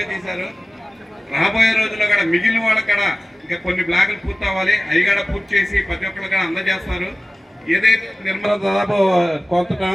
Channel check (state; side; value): normal; both; correlation 0.96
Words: చేశారు. రాబోయే రోజుల్లో కూడా మిగిలిన వాళ్ళకి కూడా ఇంకా కొన్ని బ్లాకులు పూర్తి అవ్వాలి. అవి కూడా పూర్తి చేసి ప్రతి ఒక్కరు కూడా అందజేస్తారు. ఏదైతే నిర్మాణం దాదాపు కొంత